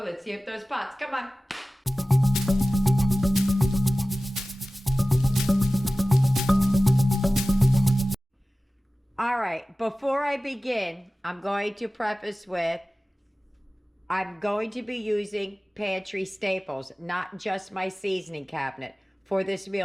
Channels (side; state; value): both; normal; correlation 0.96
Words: Let's see if those pots, come on. All right, before I begin, I'm going to preface with, I'm going to be using pantry staples, not just my seasoning cabinet. For this